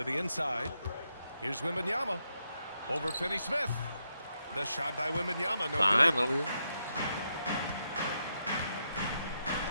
the inside. Here's Wembanyama over Finney-Smith. The shot by Wembanyama. No good. Finally.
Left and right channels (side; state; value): both; inverted; correlation -0.82